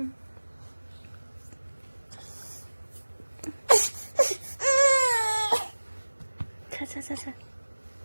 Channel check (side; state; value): both; inverted; correlation -1.00